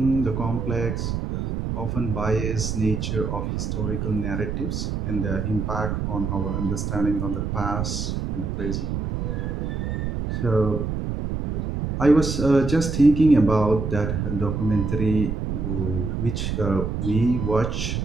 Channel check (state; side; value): noise; right; rumble, 2 dB below the sound